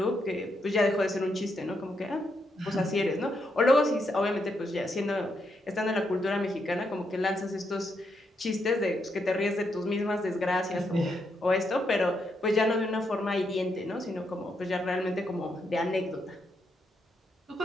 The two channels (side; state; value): both; normal; correlation 0.80